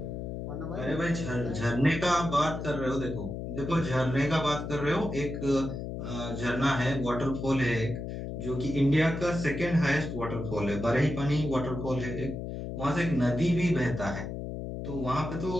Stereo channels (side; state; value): left; noise; hum, 6 dB below the sound